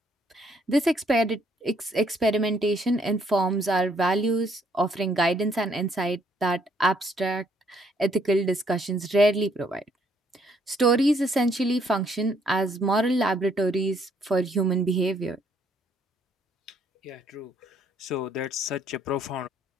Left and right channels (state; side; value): normal; both; correlation 0.68